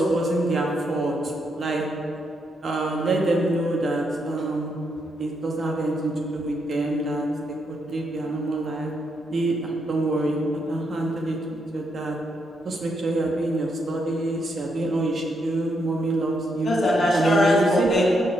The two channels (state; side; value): normal; both; correlation 0.78